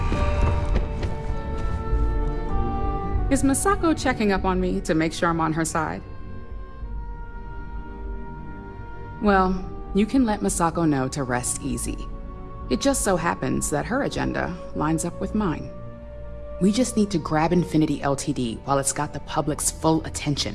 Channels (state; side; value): identical; both; correlation 1.00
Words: Is Masako checking up on me to make sure I'm on her side? Well, you can let Masako know to rest easy. It just so happens that her agenda lines up with mine. We just need to grab Infinity Ltd while it's got the public's full